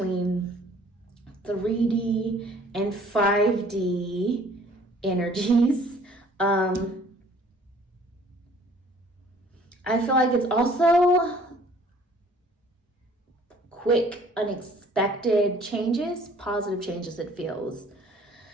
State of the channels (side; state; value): both; normal; correlation 0.55